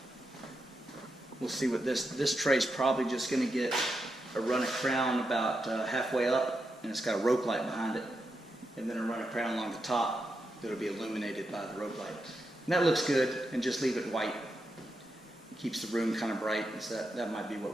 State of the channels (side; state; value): both; normal; correlation 0.86